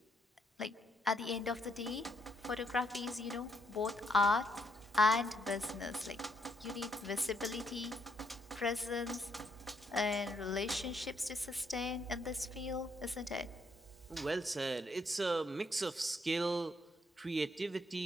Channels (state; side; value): normal; both; correlation 0.74